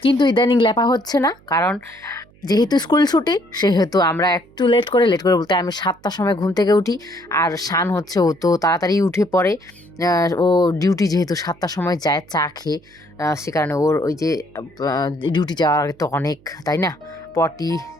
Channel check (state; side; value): noise; right; hum, 28 dB below the sound